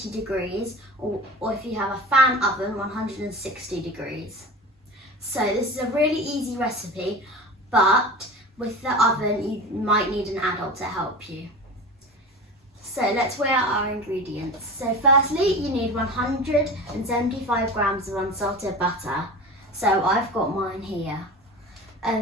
degrees or if you have a fan oven, 160 degrees. So this is a really easy recipe, but with the oven you might need an adult to help you. So let's weigh out our ingredients. So firstly, you need 175 grams of unsalted butter. So I've got mine here.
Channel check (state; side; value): normal; both; correlation 0.32